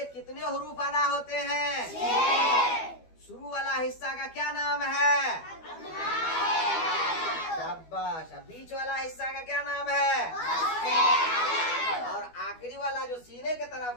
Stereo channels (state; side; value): late; right; 12 ms